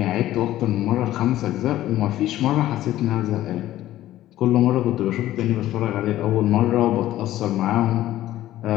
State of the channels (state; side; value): quieter; right; 14.2 dB